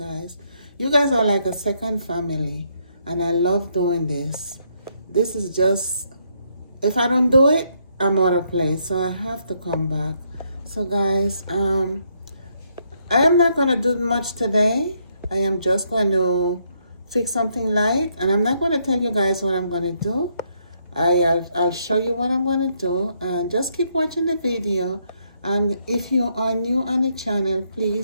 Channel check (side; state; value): both; inverted; correlation -0.74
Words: You guys are like a second family and I love doing this. This is just, if I don't do it, I'm out of place, so I have to come back. So guys, I am not going to do much today. I am just going to fix something light, and I'm not going to tell you guys what I'm going to do. I'll show you what I'm going to do, and just keep watching the video. And if you are new on the channel,